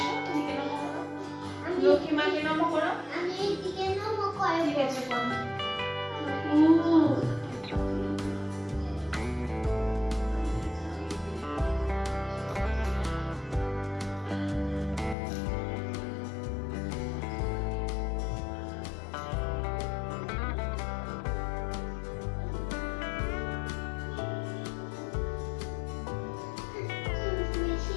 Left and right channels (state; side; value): drops out; right; at 15.2 s